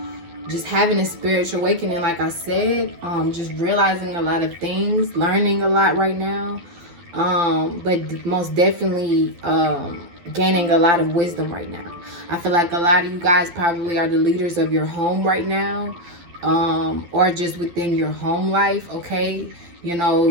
just having a spiritual awakening, like I said, just realizing a lot of things, learning a lot right now, but most definitely gaining a lot of wisdom right now. I feel like a lot of you guys probably are the leaders of your home right now, or just within your home life, okay? You know,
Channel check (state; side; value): late; left; 12 ms